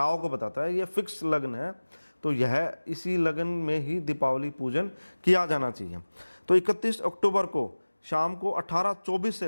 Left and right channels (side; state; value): both; inverted; correlation -1.00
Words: को बताता है, ये फिक्स लगन है। तो यह इसी लगन में ही दीपावली पूजन किया जाना चाहिए। तो 31 अक्टूबर को शाम को 18:24 से